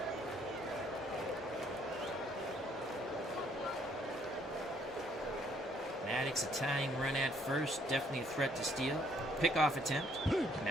Maddox a tying run at first, definitely a threat to steal. Pickoff attempt.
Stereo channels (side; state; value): both; normal; correlation 0.65